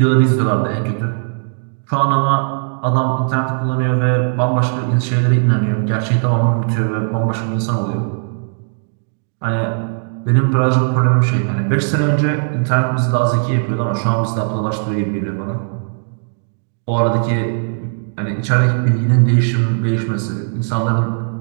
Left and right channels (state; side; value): silent; left; digital silence